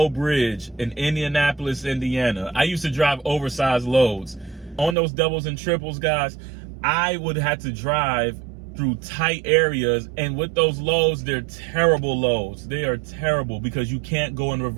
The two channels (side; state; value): left; drops out; at 5.0 s